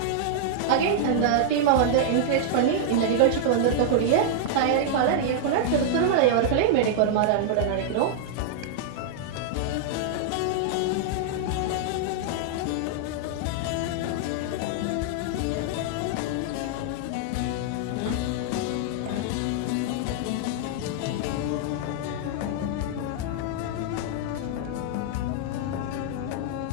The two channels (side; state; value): both; different; correlation -0.01